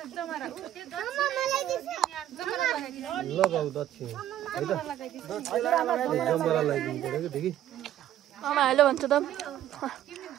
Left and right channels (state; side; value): quieter; left; 12.1 dB